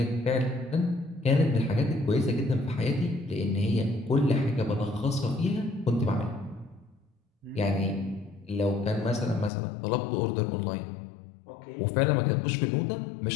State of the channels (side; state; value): right; drops out; at 9.5 s